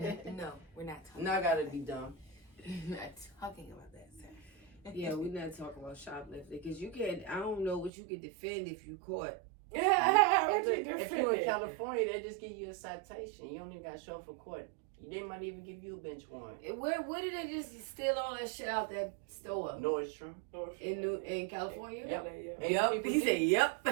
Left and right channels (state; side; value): drops out; left; at 7.9 s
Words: No, we're not talking No, I gotta be dumb. We're not talking about that, sir. Yeah, we're not talking about shoplifting because you can't. I don't know what you could defend if you caught. Yeah, what you If you're in defending? California, they just give you a citation. You don't even got to show up for court. They might even give you a bench warrant. Where did they just steal all that shit out that store Nordstrom. in California? Yep. Yeah. 80 Yup. people He deep. said, "Yup."